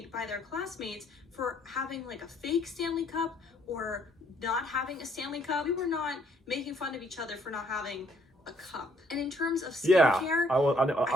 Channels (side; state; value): both; normal; correlation 0.66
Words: by their classmates for having like a fake Stanley Cup or not having a Stanley Cup. We were not making fun of each other for not having a cup. And in terms of skincare, I